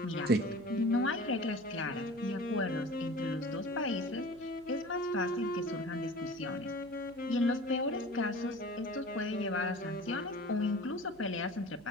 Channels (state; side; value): noise; right; hum, 26 dB below the sound